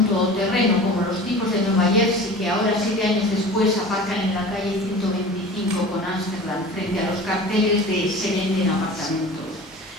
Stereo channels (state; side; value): normal; both; correlation 0.38